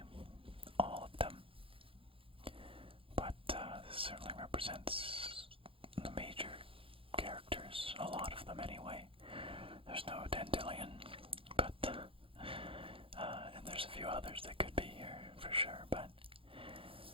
all of them. But this certainly represents the major characters, a lot of them anyway. There's no Dandelion, but and there's a few others that could be here for sure, but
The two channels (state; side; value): late; left; 0.26 ms